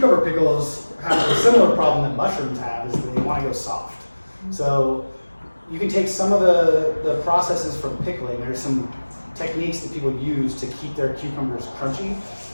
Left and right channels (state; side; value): inverted; both; correlation -1.00